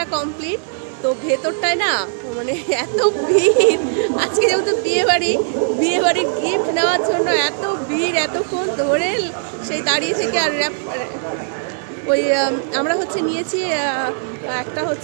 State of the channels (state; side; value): silent; left; digital silence